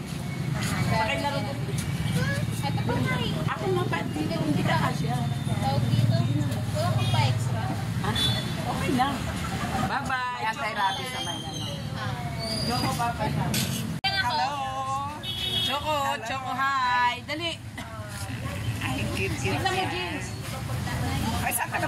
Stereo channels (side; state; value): both; identical; correlation 1.00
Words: Pakilaro ko. Ito pa nga eh. Ako nga pa, hindi ka kasya. Tawag dito. Wala kang pa extra. Ha? Okay lang. Bye-bye. Anti-rabies naman yan. Choco, bye-bye. Hello! Choco, Choco, hi. Dali. Ay, cute. Tignan mo, Jeans. Ay, saan ka